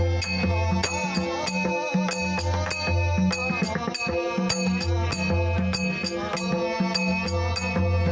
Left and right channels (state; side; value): identical; both; correlation 1.00